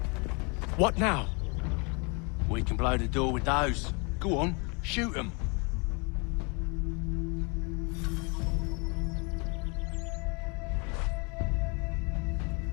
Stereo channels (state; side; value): quieter; right; 31.7 dB